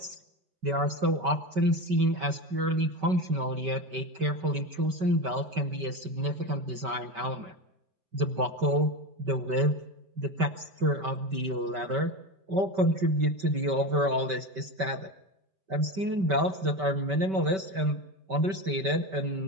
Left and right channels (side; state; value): left; late; 5.2 ms